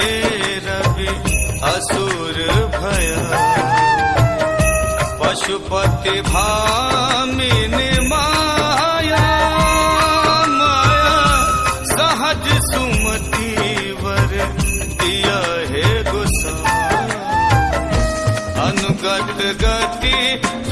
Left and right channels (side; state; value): both; identical; correlation 1.00